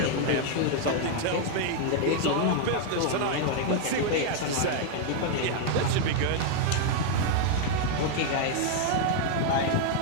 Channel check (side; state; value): both; different; correlation 0.00